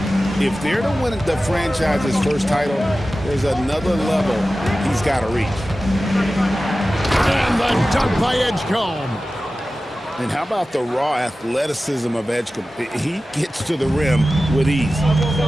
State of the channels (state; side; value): normal; both; correlation 0.95